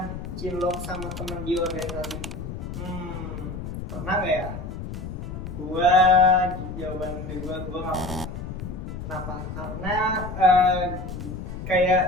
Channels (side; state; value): left; noise; rumble, 7 dB below the sound